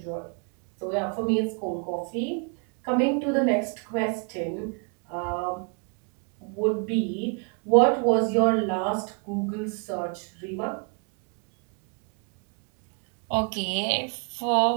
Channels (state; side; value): quieter; left; 37.1 dB